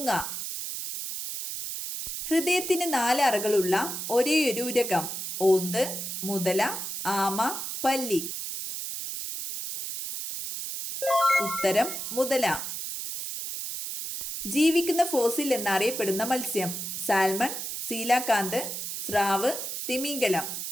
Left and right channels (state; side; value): noise; right; hiss, 5 dB below the sound